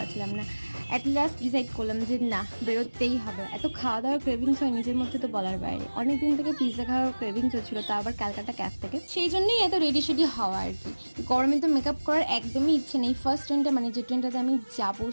না। অ্যাট লাস্ট ডিসাইড করলাম যে না, বেরোতেই হবে। এত খাওয়া দাওয়ার ক্রেভিংস হয় নিজের মধ্যে, তো বলার বাইরে। অনেক দিন থেকে পিৎজা খাওয়ার ক্রেভিংস হচ্ছিল, তা আবার ক্যালকাটা ক্যাফ থেকে। সেই জন্যই এত রেডি সেডি হওয়া আর কি। গরমে তো মেকআপ করার একদমই ইচ্ছে নেই। ফার্স্ট ট্রেনটা, মানে যে ট্রেনটাতে আমি যাবো,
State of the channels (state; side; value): inverted; both; correlation -1.00